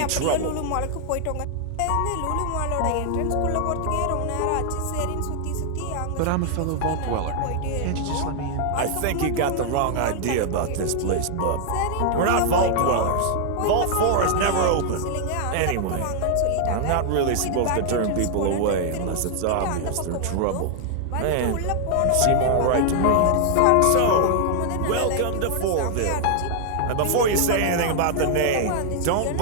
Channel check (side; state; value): both; different; correlation 0.00